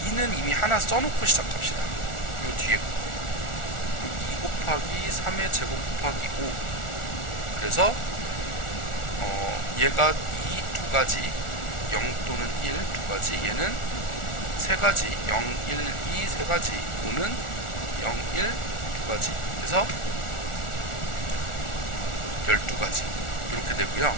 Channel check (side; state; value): right; late; 1.4 ms